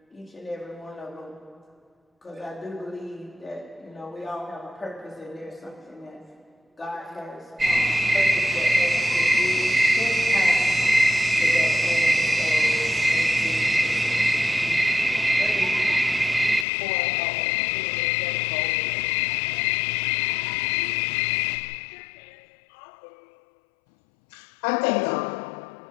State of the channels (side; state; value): right; drops out; at 16.7 s